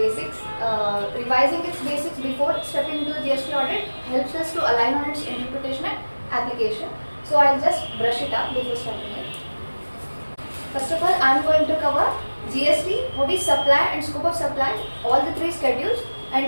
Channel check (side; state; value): both; inverted; correlation -1.00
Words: Revising its basics before stepping into the GST audit helps us to align on its interpretation and application. So I'll just brush it up before starting it. First of all, I'm going to cover GST, what is supply and scope of supply, all the three schedules,